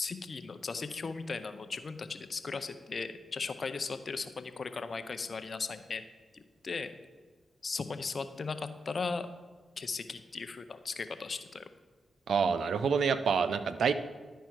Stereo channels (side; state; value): both; normal; correlation 0.81